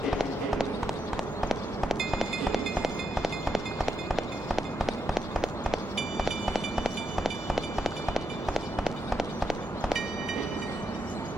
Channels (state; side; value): normal; both; correlation 0.81